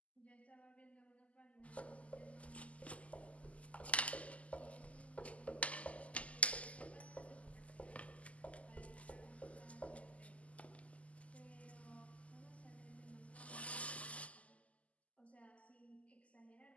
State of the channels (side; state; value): right; late; 0.067 ms